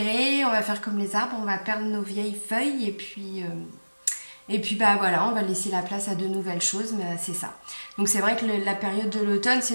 on va faire comme les arbres, on va perdre nos vieilles feuilles et puis bah voilà, on va laisser la place à de nouvelles choses, mais c'est ça. Donc c'est vrai que la période de l'automne,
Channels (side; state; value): both; inverted; correlation -1.00